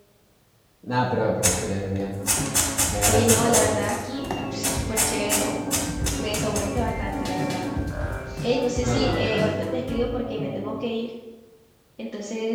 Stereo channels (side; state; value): both; identical; correlation 1.00